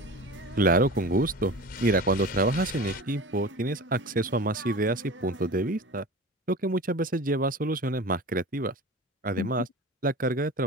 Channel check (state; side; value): normal; both; correlation 0.34